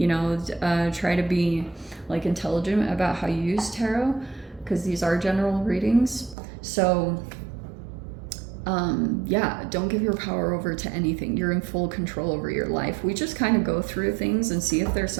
know, try to be like intelligent about how you use tarot, because these are general readings. So yeah, don't give your power over to anything. You're in full control over your life. We just kind of go through things and see if there's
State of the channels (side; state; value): left; drops out; at 6.4 s